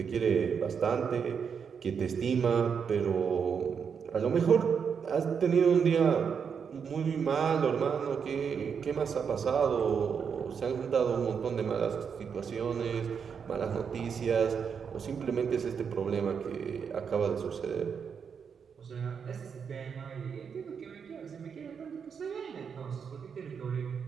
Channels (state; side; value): quieter; left; 6.7 dB